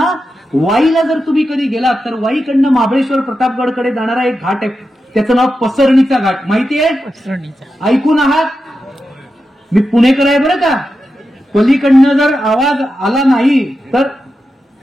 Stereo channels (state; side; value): normal; both; correlation 0.89